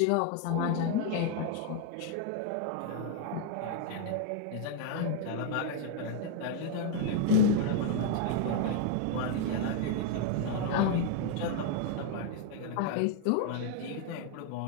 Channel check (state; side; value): different; both; correlation 0.00